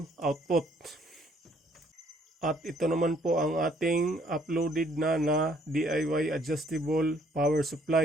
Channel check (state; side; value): normal; both; correlation 0.64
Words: output. At ito naman po ang ating uploaded na DIY adjustable power